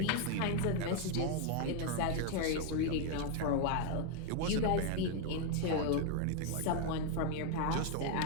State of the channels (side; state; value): both; different; correlation 0.01